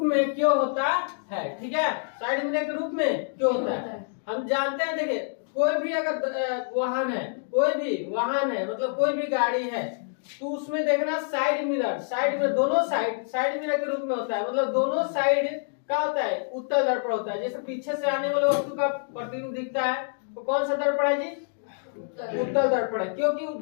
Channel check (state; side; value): silent; right; digital silence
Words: में क्यों होता है? ठीक है, साइड मिरर के रूप में क्यों होता है? हम जानते हैं, देखिए कोई भी अगर वाहन है, कोई भी वाहन है मतलब कोई भी गाड़ी है, तो उसमें देखना साइड मिरर दोनों साइड मिरर के रूप में होता है। मतलब दोनों साइड क्या होता है? उत्तल दर्पण होता है। जैसे पीछे से आने वाले वस्तु का प्रतिबिंब दिखता है तो कौन सा दर्पण है जी? उत्तल दर्पण है, क्योंकि